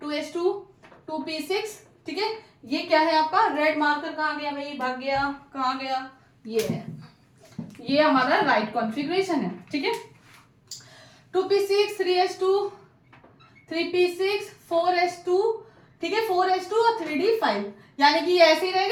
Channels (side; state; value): both; identical; correlation 1.00